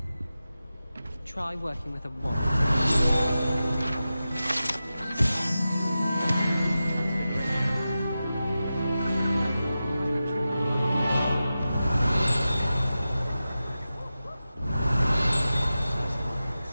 Try working with a wand.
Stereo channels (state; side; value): inverted; both; correlation -0.93